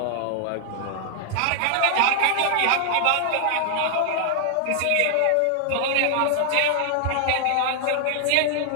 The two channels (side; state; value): both; different; correlation 0.00